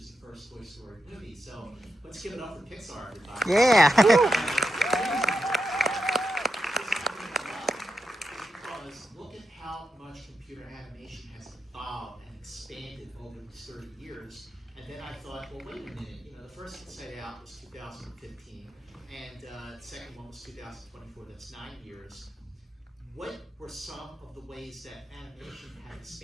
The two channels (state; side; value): normal; both; correlation 0.86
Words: the first Toy Story movie. So let's give it up for Pixar, everybody. Yeah. Because look at how much computer animation has evolved and expanded over these 30 years. And then I thought, well, wait a minute. The first Inside Out was 2015, and the second one was 2024. That's 9 years. What were some of the ways that animation had